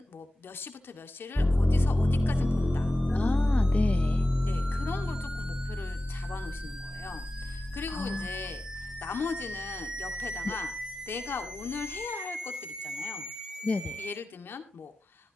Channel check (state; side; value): normal; both; correlation 0.94